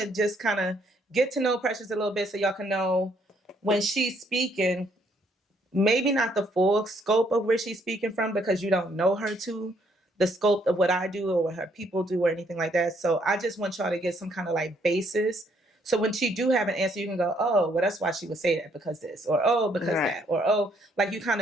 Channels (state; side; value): normal; both; correlation 0.69